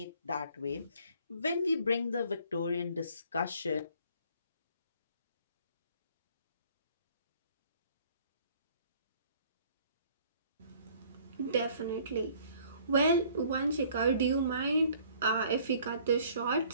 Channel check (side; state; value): both; inverted; correlation -0.56